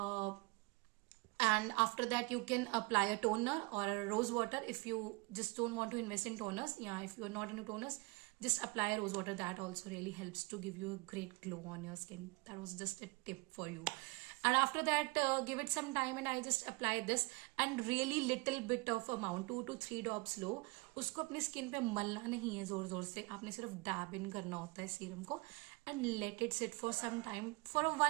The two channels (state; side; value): quieter; left; 26.3 dB